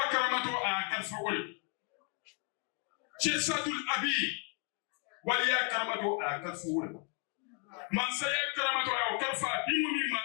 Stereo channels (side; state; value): right; quieter; 35.5 dB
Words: karamato a kalfawol Sheikh Sadul Abi waliya karamato a kalfawol man saya karamato a kalfa dimu mimma